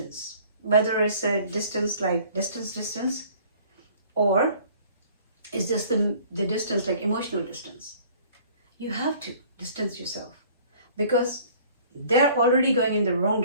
whether it's a distance like distance, or it's just the distance like emotional distance. You have to distance yourself because they're already going in the wrong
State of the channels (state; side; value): inverted; both; correlation -0.53